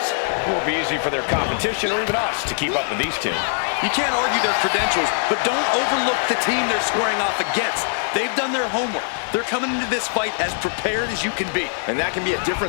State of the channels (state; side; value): silent; right; digital silence